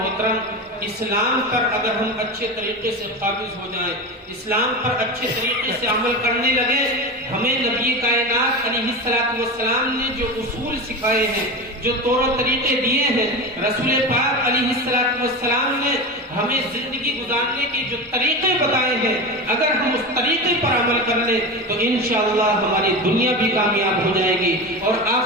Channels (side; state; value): both; normal; correlation 0.24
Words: اسلام پر اگر ہم اچھے طریقے سے قابض ہو جائیں، اسلام پر اچھے طریقے سے عمل کرنے لگے، ہمیں نبی کائنات علیہ السلام نے جو اصول سکھائے ہیں، جو طور و طریقے دیے ہیں، رسول پاک علیہ السلام نے ہمیں زندگی گزارنے کے جو طریقے بتائے ہیں، اگر ہم اس طریقے پر عمل کر لیں تو انشاءاللہ ہماری دنیا بھی کامیاب ہو جائے گی اور